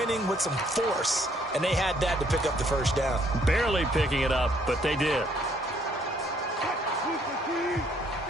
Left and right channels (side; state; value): both; normal; correlation 0.66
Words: with some force, and they had that to pick up the 1st down. Barely picking it up, but they did.